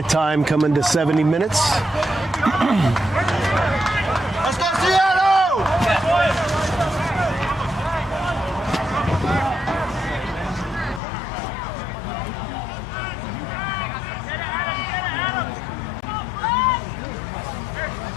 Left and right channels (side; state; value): right; drops out; at 11.0 s